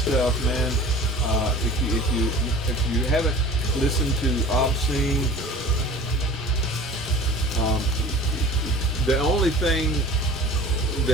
man. If you haven't listened to Obscene, the only thing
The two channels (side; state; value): both; normal; correlation 0.42